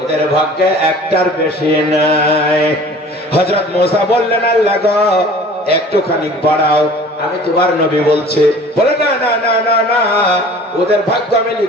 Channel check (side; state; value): both; normal; correlation 0.46